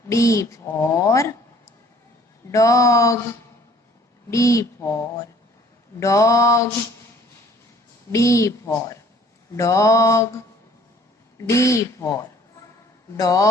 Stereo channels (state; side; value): normal; both; correlation 0.56